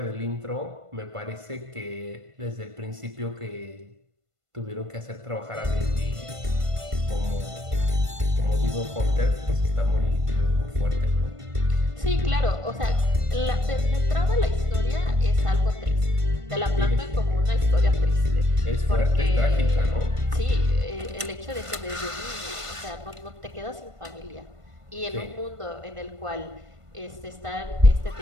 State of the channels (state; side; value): late; left; 1.5 ms